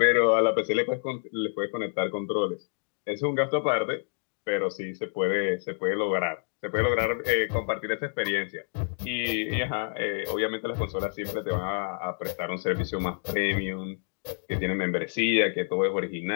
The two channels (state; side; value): silent; right; 59 dB below the other